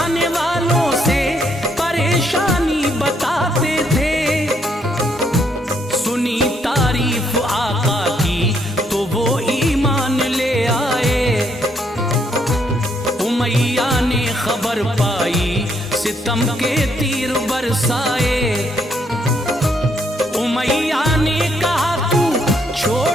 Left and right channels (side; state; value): both; normal; correlation 0.72